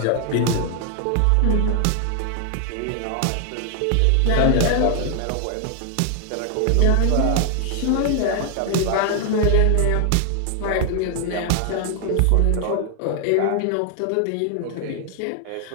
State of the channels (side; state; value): both; different; correlation 0.00